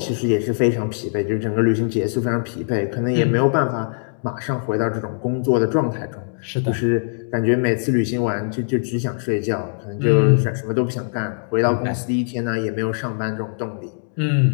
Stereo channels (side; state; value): right; silent; digital silence